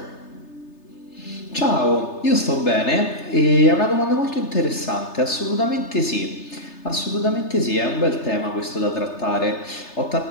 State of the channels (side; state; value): right; late; 3.3 ms